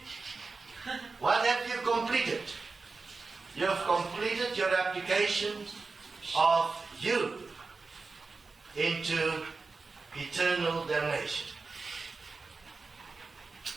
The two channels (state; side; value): quieter; left; 4.1 dB